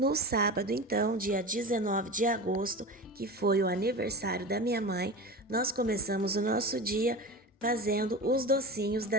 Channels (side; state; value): both; normal; correlation 0.30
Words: sábado, então, dia 19 de agosto, que foi o aniversário da minha mãe, nós começamos o nosso dia fazendo os docinhos